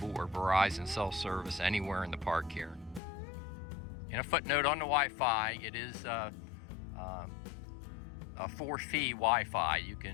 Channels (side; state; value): right; drops out; at 3.0 s